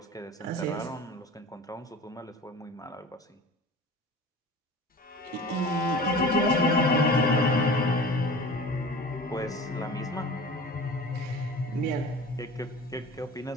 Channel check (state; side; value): normal; both; correlation 0.38